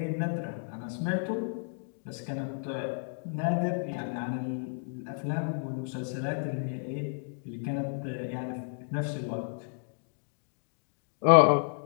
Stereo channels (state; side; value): silent; right; digital silence